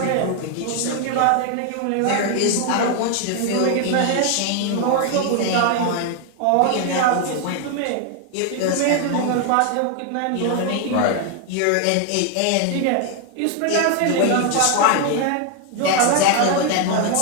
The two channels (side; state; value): both; different; correlation 0.01